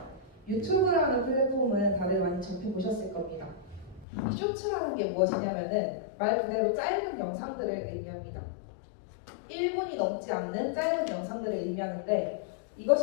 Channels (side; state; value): right; drops out; at 4.0 s